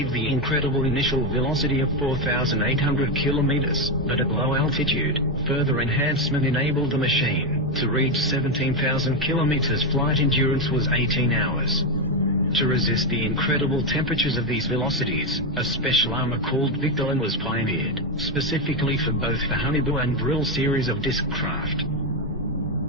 the incredible initial velocity of 4,800 kilometers, but at low altitude, further enhancement enabled the machine to reach 17,000 kilometers. Flight endurance was 18 hours. To resist the incredible temperatures of these velocities, a special armor called Victolan was pioneered, specifically for both the Honeyboo and Vril series of disc craft.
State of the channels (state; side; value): normal; both; correlation 0.07